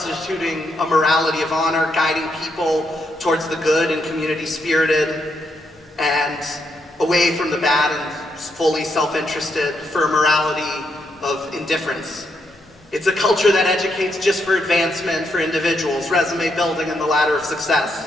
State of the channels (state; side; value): normal; both; correlation 0.79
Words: a morality of honor, guiding people towards the good and community-spirited, and away from the bad and fully self-interested for a morality of indifference. It's a culture that educates just for advancement for individuals, resume building and the ladder of